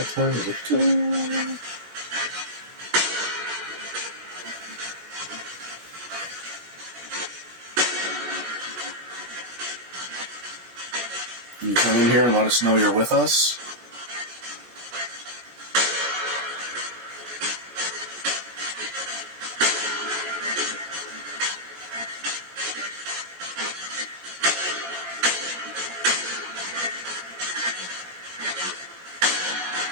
time is it? Can you come in here and let us know you're with us?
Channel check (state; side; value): late; left; 16 ms